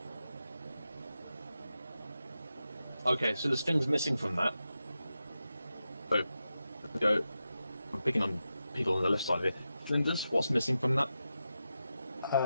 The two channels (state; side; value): inverted; both; correlation -0.90